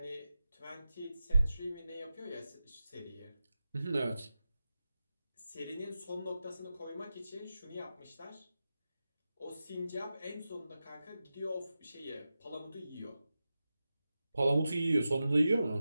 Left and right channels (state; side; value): inverted; both; correlation -0.93